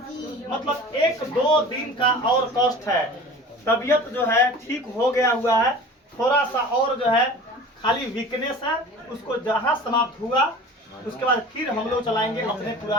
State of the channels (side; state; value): both; normal; correlation 0.40